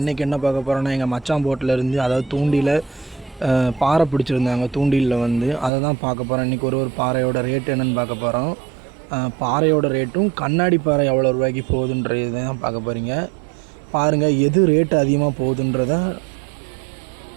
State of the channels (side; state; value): left; drops out; at 5.7 s